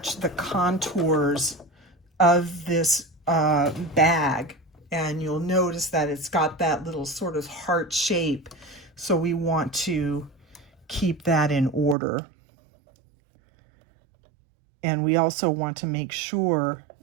the contours of this bag. And you'll notice that it's got that little sort of heart shape. So we want to keep that in order. And we also want to make sure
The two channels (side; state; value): left; drops out; at 12.0 s